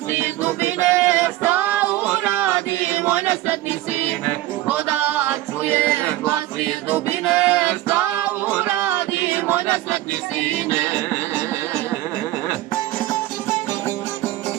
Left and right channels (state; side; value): quieter; left; 15.8 dB